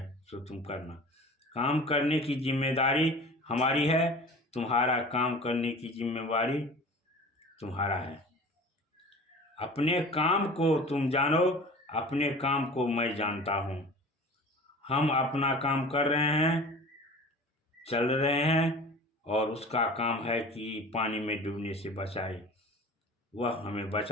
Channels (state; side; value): normal; both; correlation 0.40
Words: सो तुम करना। काम करने की जिम्मेदारी हमारी है, तुम्हारा काम करने की जिम्मेदारी तुम्हारा है। अपने काम को तुम जानो, अपने काम को मैं जानता हूँ। हम अपना काम कर रहे हैं, चल रहे हैं, और उसका काम है कि पानी में डूबने से बचाए। वह हमें